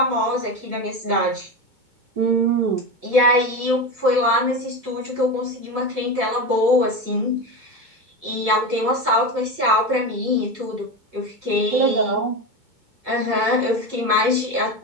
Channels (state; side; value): late; left; 2.2 ms